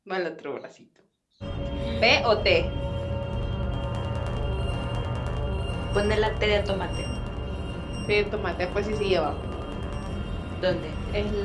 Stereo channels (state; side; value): identical; both; correlation 1.00